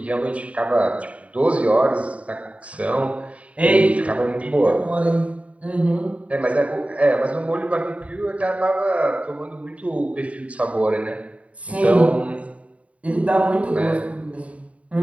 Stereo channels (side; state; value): left; late; 0.065 ms